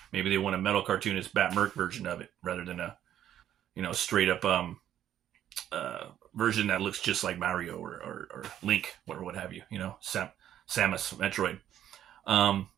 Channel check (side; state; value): left; quieter; 11.0 dB